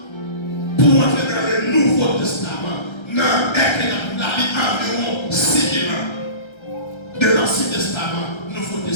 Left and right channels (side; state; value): right; late; 1.3 ms